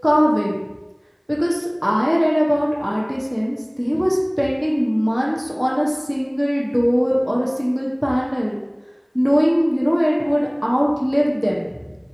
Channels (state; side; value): identical; both; correlation 1.00